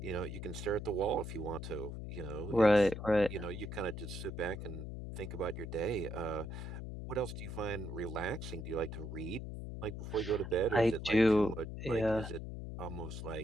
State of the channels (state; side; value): noise; left; hum, 7 dB below the sound